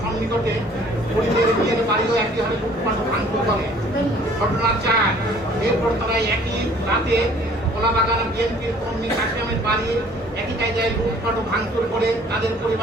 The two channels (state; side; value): normal; both; correlation 0.54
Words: সন্নিকটে ঘুরিদের বিয়ের বাড়িও একই হারে লুটপাট ভাঙচুর করে। ঘটনা 4, এরপর তারা একই রাতে কলাবাগান বিএনপির কর্মী কাশিমের বাড়ি একই কায়দায় লুটপাট ও ভাঙচুর করে তাদের